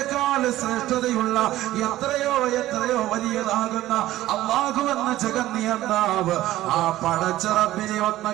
ശ്രേഷ്ഠതയുള്ള എത്രയോ വലിയതാകുന്ന അല്ലാഹു എന്ന ജഗന്നിയന്താവ്, ആ പടച്ച റബ്ബിനെ ഒന്ന്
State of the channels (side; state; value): left; quieter; 15.1 dB